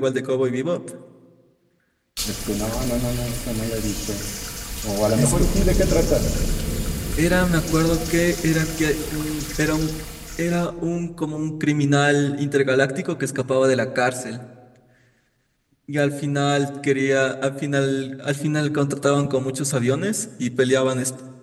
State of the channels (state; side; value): identical; both; correlation 1.00